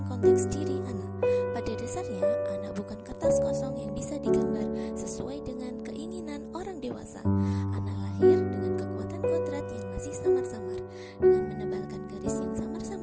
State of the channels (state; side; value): identical; both; correlation 1.00